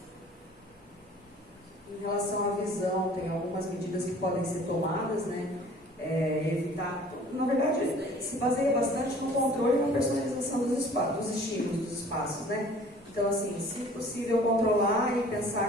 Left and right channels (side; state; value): both; normal; correlation 0.50